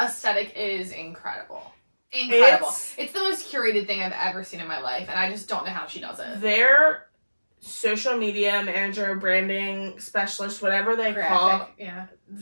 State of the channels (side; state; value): both; inverted; correlation -1.00